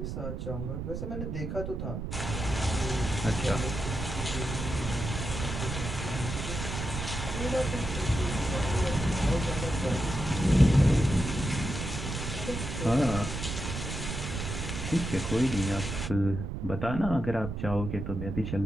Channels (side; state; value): right; noise; rumble, 5 dB below the sound